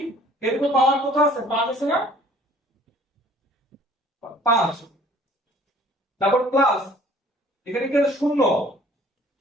এর উপর পাওয়ার কত আছে? 5 আছে না? 5, তারপর প্লাস এখানে কি আছে 0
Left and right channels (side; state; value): both; normal; correlation 0.54